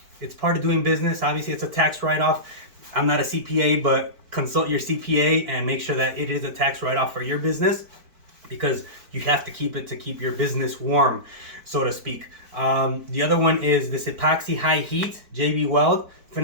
it's part of doing business. Obviously it's a tax write-off. I'm not a CPA, but consult your CPA and make sure that it is a tax write-off for your business, because you have to keep it to keep your business warm, so to speak. The other one is this Epoxy High Heat JB Weld.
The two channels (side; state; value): left; late; 4.5 ms